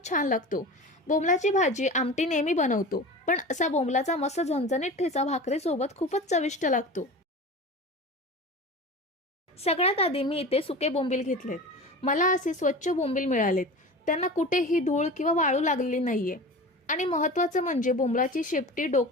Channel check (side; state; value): both; normal; correlation 0.33